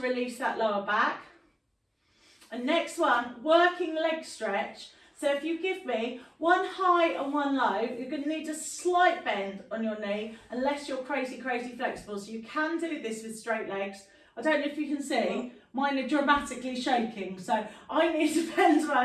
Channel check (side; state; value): both; identical; correlation 1.00